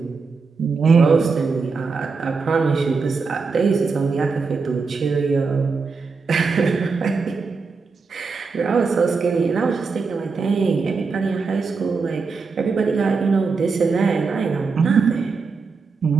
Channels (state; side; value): quieter; left; 4.7 dB